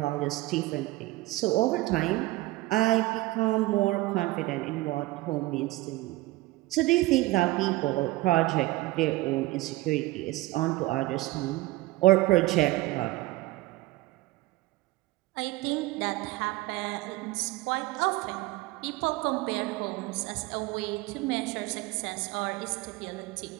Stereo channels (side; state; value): left; quieter; 19.3 dB